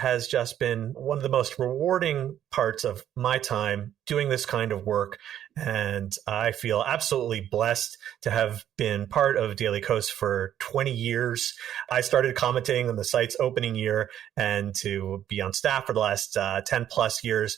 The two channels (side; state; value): left; quieter; 10.8 dB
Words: just been one of the most rewarding parts of my time doing this kind of work. And I feel absolutely blessed to have been part of Daily Kos for 20 years. I started commenting on the site's opening year, and to be on staff for the last 10 plus years,